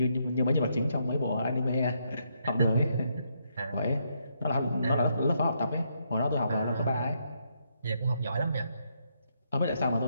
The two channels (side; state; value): both; inverted; correlation -0.76